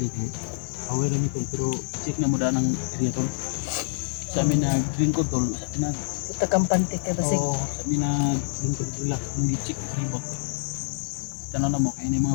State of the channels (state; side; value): silent; right; 58 dB below the other